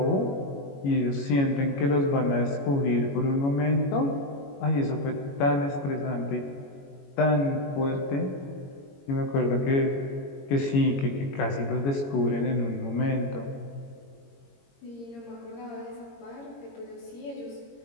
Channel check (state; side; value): late; right; 22 ms